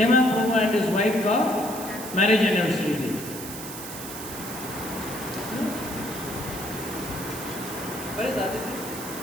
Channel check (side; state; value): right; noise; hiss, 10 dB below the sound